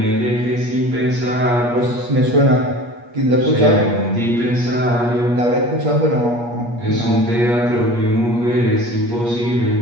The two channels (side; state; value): left; late; 8.4 ms